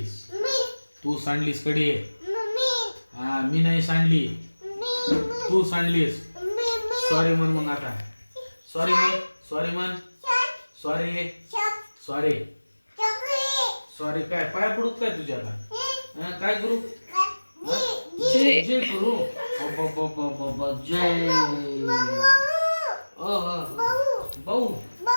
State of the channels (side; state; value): both; inverted; correlation -1.00